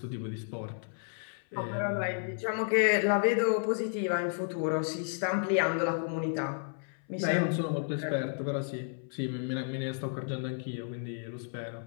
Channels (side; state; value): right; silent; 56 dB below the other